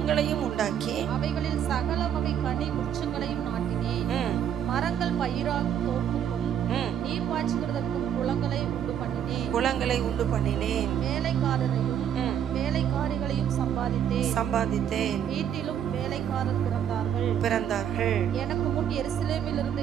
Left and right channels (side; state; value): left; quieter; 9.3 dB